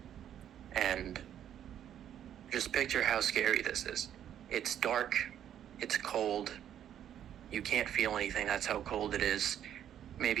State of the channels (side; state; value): left; quieter; 10.2 dB